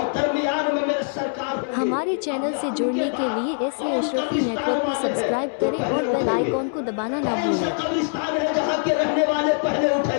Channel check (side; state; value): right; silent; 63 dB below the other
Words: दरमियान में मेरे सरकार। हमारे चैनल से जुड़ने के लिए एसए अशरफी नेटवर्क को सब्सक्राइब करें और बेल आइकॉन को दबाना ना भूलें। कब्रिस्तान है जहाँ के रहने वाले पहले